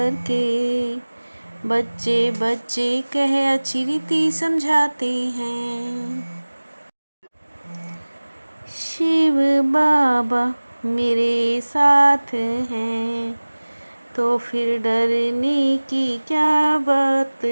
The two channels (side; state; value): both; inverted; correlation -1.00